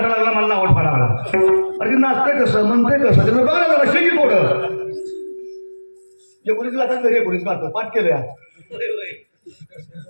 लागला मला आवड फाडा लागला अरे नाचतंय कसं म्हणतंय कसं त्याला बघा ना जरा शेकी थोडं एकोणीस गातात घरी एकोणीस गातो पाठ केलं या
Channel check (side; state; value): both; inverted; correlation -1.00